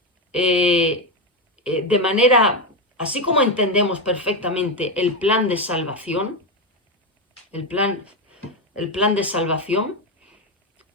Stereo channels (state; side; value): normal; both; correlation 0.09